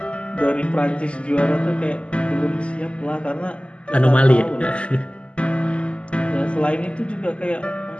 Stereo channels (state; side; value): late; right; 0.056 ms